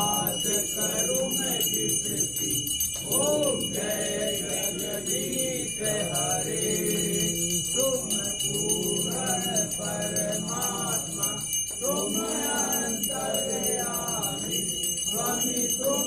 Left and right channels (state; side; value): noise; left; hum, 20 dB below the sound